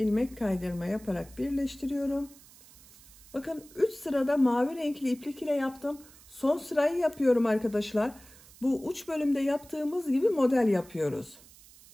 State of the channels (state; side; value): noise; right; hiss, 23 dB below the sound